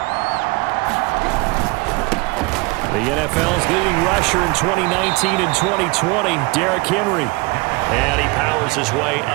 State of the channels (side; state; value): left; quieter; 25.9 dB